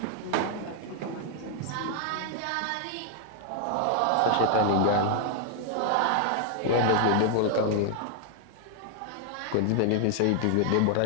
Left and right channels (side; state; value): both; different; correlation 0.00